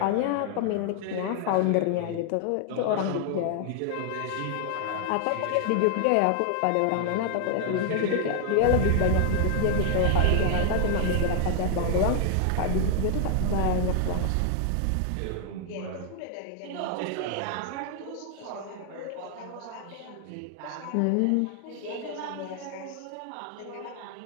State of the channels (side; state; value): both; different; correlation 0.00